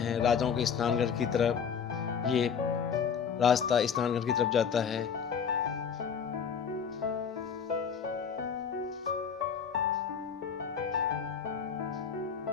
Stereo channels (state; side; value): quieter; right; 6.9 dB